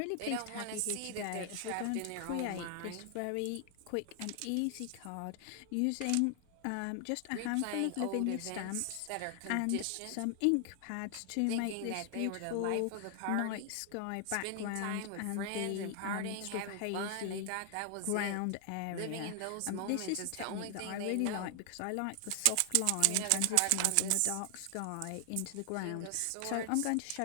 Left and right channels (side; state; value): both; different; correlation 0.00